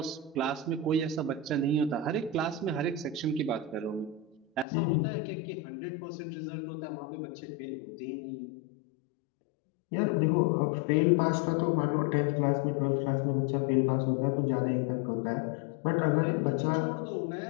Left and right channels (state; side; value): drops out; right; at 4.7 s